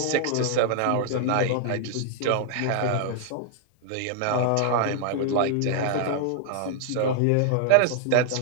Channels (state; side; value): different; both; correlation -0.01